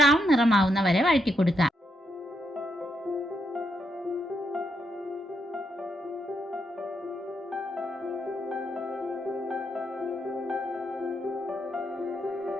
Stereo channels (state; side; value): normal; both; correlation 0.79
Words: നിറമാവുന്ന വരെ വഴറ്റി കൊടുക്കുക.